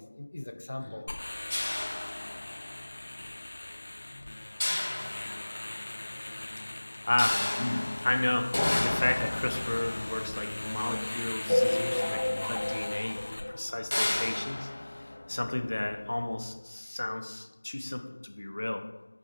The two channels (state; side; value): inverted; both; correlation -1.00